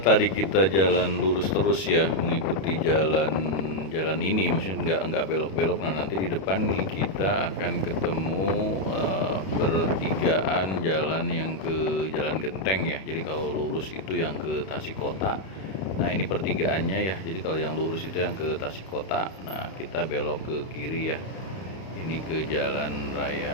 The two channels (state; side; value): late; right; 32 ms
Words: kita jalan lurus terus ya, mengikuti jalan ini, maksudnya nggak belok-belok. Nah nanti di depan nih kita akan ketemu pertigaan jalan yang ke Jalan Genteng ya. Jadi kalau lurus itu yang ke Tasik Kota. Nah ini pertigaannya ya. Jadi kalau yang lurus itu yang ke Tasik Kota. Nah kita belok ke kiri ya. Ini ke Jalan